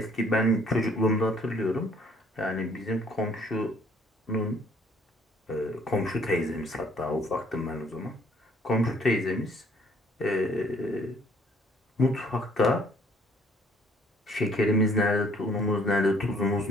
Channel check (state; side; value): normal; both; correlation 0.61